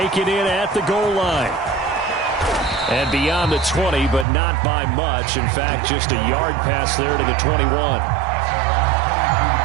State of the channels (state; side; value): drops out; left; at 4.2 s